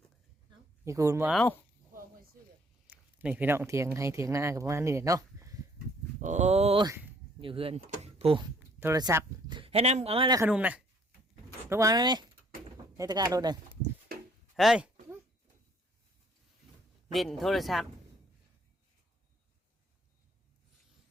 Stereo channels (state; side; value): normal; both; correlation 0.62